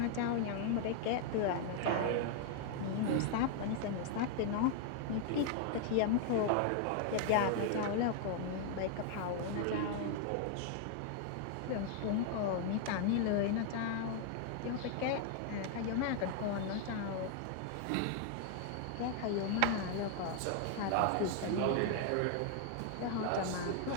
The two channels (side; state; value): both; different; correlation 0.00